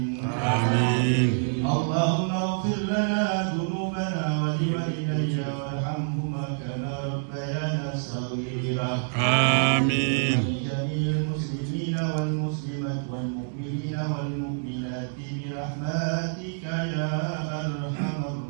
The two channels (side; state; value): left; silent; digital silence